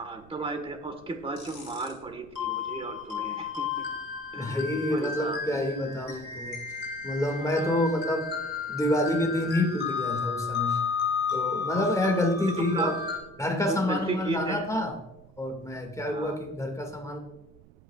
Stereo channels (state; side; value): noise; right; rumble, 24 dB below the sound